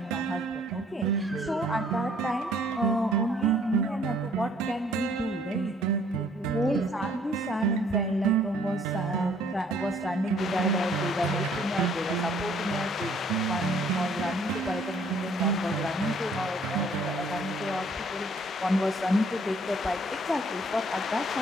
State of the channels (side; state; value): both; normal; correlation 0.61